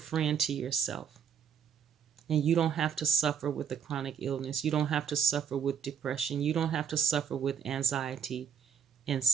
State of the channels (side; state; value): left; quieter; 7.7 dB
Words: friend to yourself. And you don't have to suffer with a chronic illness. You don't have to suffer with depression. You don't have to suffer with anxiety in